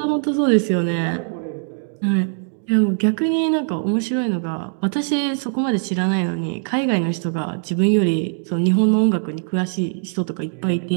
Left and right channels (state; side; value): silent; left; digital silence